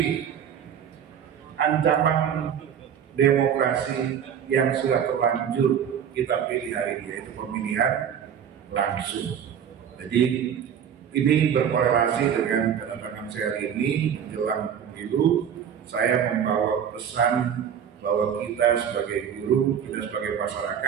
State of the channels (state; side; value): quieter; left; 8.5 dB